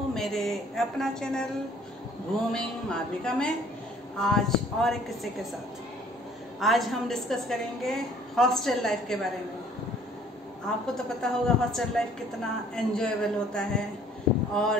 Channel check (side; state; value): both; normal; correlation 0.57